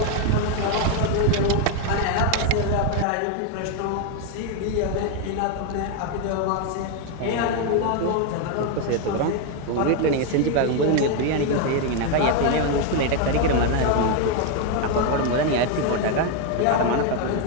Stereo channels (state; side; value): different; both; correlation 0.01